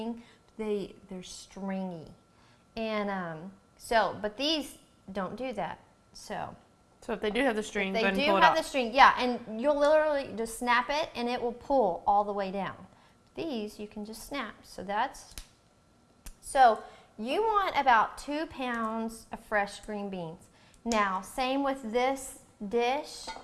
They're stringy. And but these don't do that. So if they do have the string, if go they ahead and do pull it have off. the string, yeah, and you'll literally just snap it and it will pull all the way down. These you can just snap. So you want about 2 pounds of fresh green beans. Now, same with this dish.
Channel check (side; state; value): both; identical; correlation 1.00